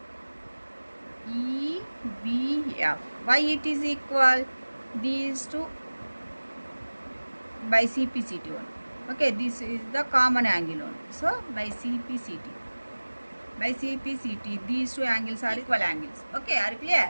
EBF. Why it is equal? These two by CPCT only. Okay, this is the common angle only. So by CPCT, these two angles are equal angles. Okay, are you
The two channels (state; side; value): inverted; both; correlation -1.00